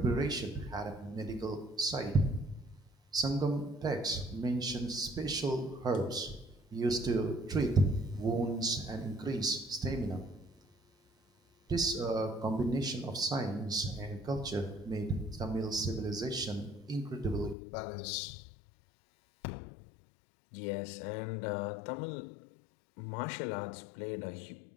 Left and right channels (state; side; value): drops out; right; at 17.6 s